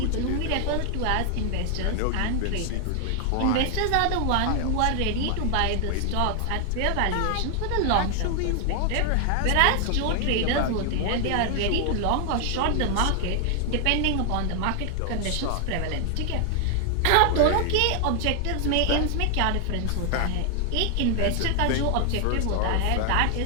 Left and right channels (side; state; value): both; different; correlation 0.00